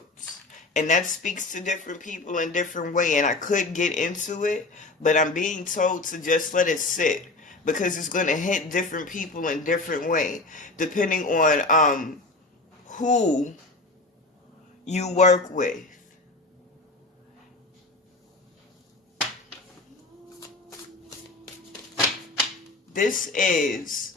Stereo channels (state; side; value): quieter; right; 3.2 dB